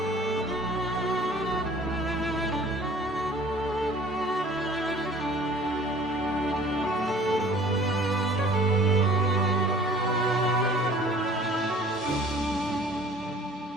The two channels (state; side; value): normal; both; correlation 0.50